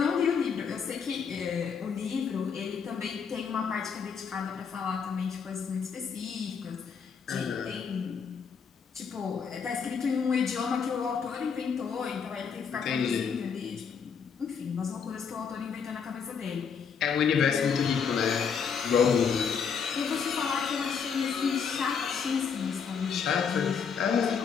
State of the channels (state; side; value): quieter; right; 6.4 dB